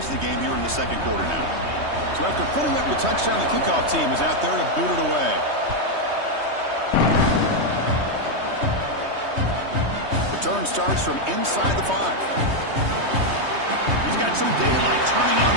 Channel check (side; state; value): left; late; 3.2 ms